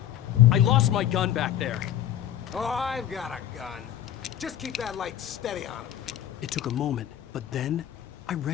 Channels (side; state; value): right; quieter; 11.0 dB